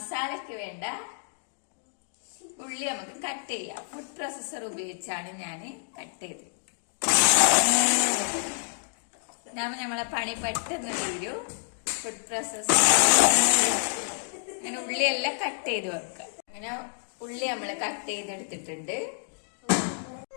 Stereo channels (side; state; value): right; silent; digital silence